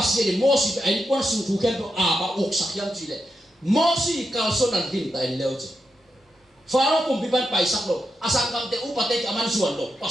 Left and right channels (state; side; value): normal; both; correlation 0.86